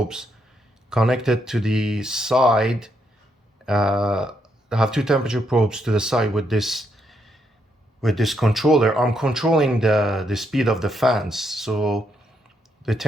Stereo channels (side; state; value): both; normal; correlation 0.77